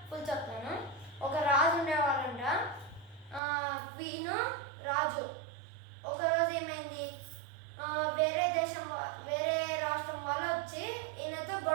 ఫుల్ చెప్తాను. ఒక రాజు ఉండేవాళ్ళంట. క్వీన్, రాజు. ఒకరోజు ఏమైంది, వేరే రాష్ట్రం వాళ్ళు వచ్చి ఈయనతో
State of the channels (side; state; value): left; drops out; at 3.4 s